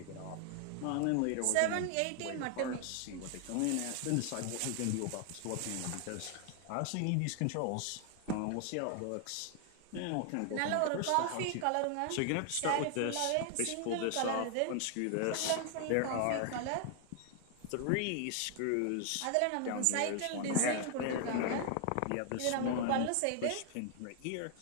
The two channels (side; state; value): both; different; correlation 0.00